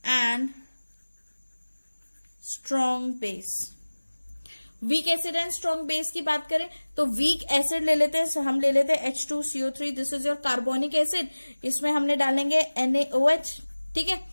and strong base. Weak acid and strong base की बात करें तो वीक एसिड ले लेते हैं, हम ले लेते हैं H2CO3, this is your carbonic acid, इसमें हमने डालेंगे NaOH, ठीक है।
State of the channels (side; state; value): both; inverted; correlation -1.00